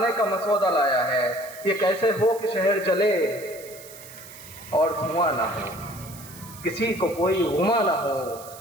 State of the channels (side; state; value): right; noise; hiss, 17 dB below the sound